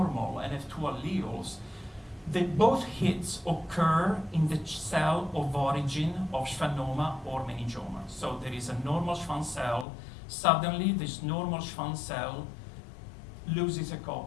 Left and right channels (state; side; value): drops out; right; at 9.9 s